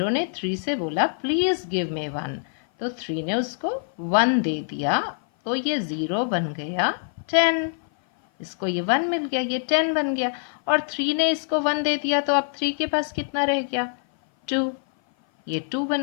ने 3 से बोला प्लीज गिव मी 1, तो 3 ने उसको 1 दे दिया, तो ये 0 बन गया 10। इसको ये 1 मिल गया, ये 10 बन गया, और 3 ने इसको 1 दे दिया, तो अब 3 के पास कितना रह गया? 2, ये 2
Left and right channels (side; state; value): right; silent; 56 dB below the other